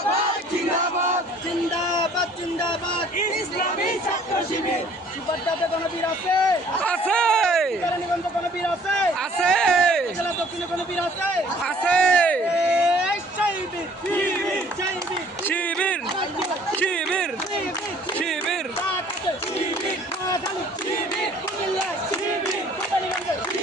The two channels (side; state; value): both; normal; correlation 0.55